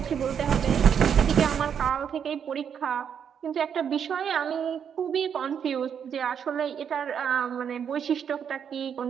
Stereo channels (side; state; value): left; quieter; 7.8 dB